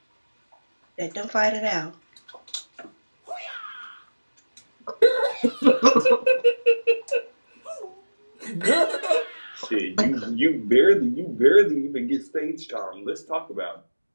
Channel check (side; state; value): both; inverted; correlation -1.00